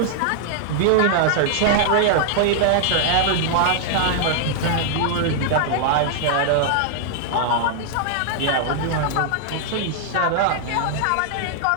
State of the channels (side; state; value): both; different; correlation -0.01